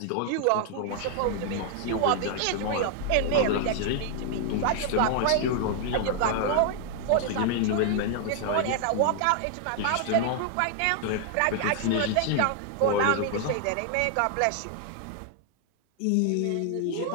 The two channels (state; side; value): different; both; correlation 0.00